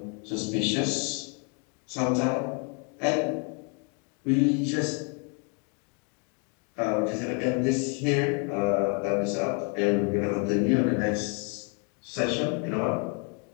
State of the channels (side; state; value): right; quieter; 36.7 dB